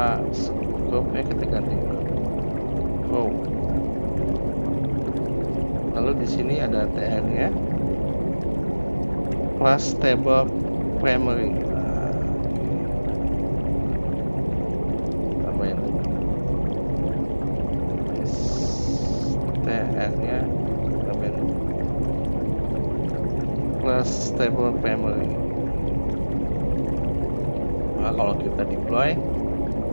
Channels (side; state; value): both; inverted; correlation -1.00